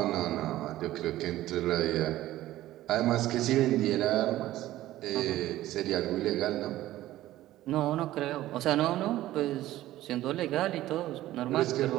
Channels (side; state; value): left; quieter; 15.0 dB